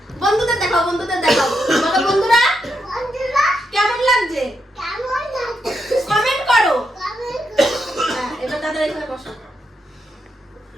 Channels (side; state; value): both; normal; correlation 0.82